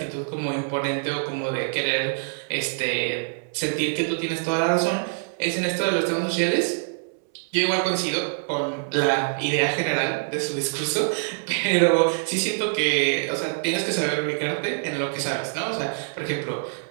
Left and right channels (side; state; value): left; silent; 61 dB below the other